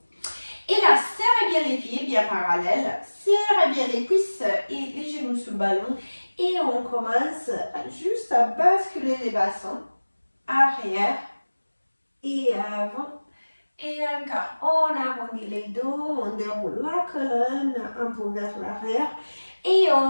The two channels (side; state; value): both; inverted; correlation -1.00